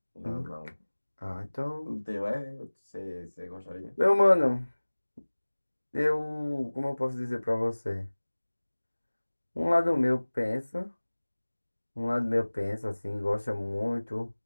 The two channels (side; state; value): both; inverted; correlation -1.00